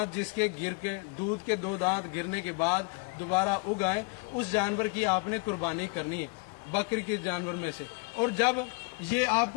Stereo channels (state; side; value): quieter; right; 32.2 dB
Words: جس کے گر کے دودھ کے 2 دانت گرنے کے بعد دوبارہ اگ آئے اس جانور کی آپ نے قربانی کرنی ہے بکری کے جانور میں سے. اور جب یہ آپ